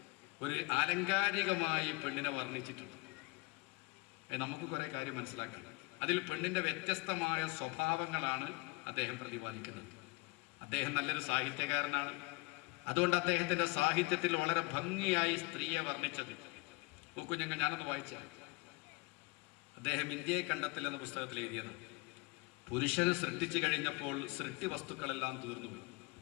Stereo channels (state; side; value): quieter; right; 24.7 dB